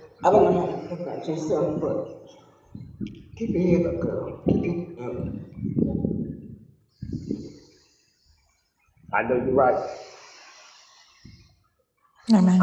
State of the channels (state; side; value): identical; both; correlation 1.00